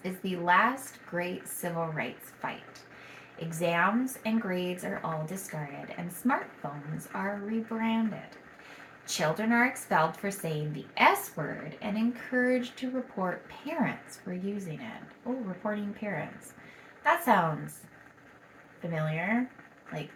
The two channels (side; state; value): both; identical; correlation 1.00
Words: is the last great civil rights fight. Exams and grades are all discarded, and smartphones are rebranded. Children are expelled for saying the S word and encouraged to report parents for using it. Oh, reporting parents. That sounds familiar, like